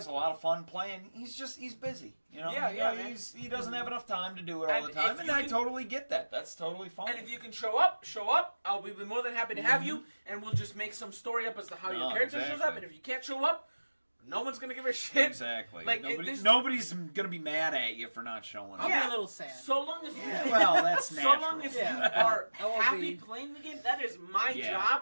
a lot of fun playing. He's busy. He doesn't have enough time to do it all the time, and I totally get that. That's totally fine. And if you can show up. I'll be more than happy to have you, and we'll just make some story up as to how your character shows up. And if you can't show up, no one's gonna give a shit. Exactly. Like, nobody's gonna be mad at you for not showing up. I'll be a little sad. So long as that's natural. So long as you are happy playing the game, that is my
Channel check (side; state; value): both; inverted; correlation -1.00